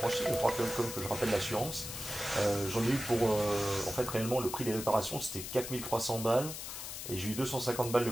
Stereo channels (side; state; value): left; noise; hiss, 8 dB below the sound